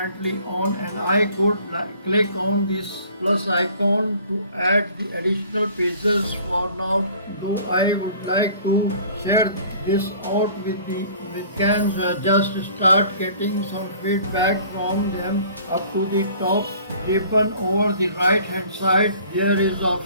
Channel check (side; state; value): both; inverted; correlation -0.51